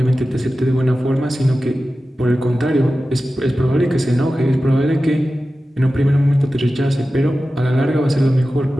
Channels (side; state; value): both; normal; correlation 0.94